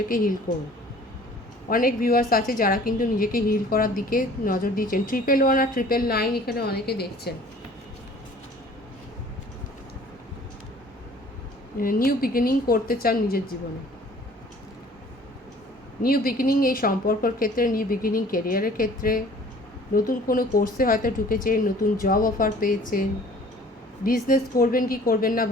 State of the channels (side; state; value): both; normal; correlation 0.51